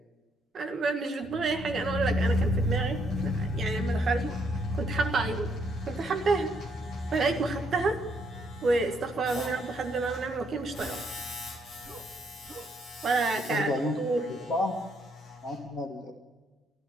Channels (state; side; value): normal; both; correlation 0.72